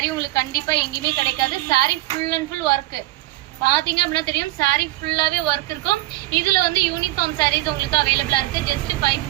உங்களுக்கு கண்டிப்பா எங்கேயுமே கிடைக்காது. Sorry full and full work பாத்தீங்க அப்படின்னா தெரியும். சாரி ஃபுல்லாவே ஒர்க் இருக்கும். இதுல வந்து யூனிஃபார்ம் சாரீஸ் உங்களுக்கு அவைலபிளா இருக்கு. ஜஸ்ட்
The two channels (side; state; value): left; quieter; 18.3 dB